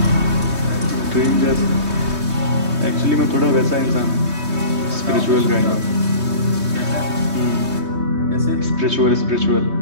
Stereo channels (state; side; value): late; left; 3.2 ms